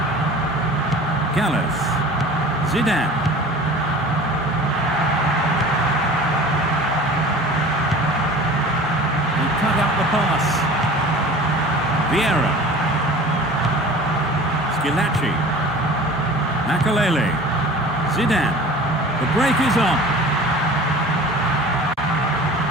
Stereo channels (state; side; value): normal; both; correlation 0.41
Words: Gallas. Zidane. He cut out the pass. Vieira. Skilacci. Makalele. Zidane. The break is on.